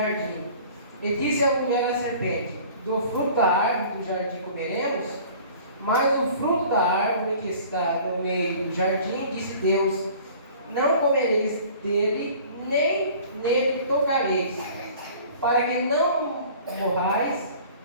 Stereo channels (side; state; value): both; inverted; correlation -0.48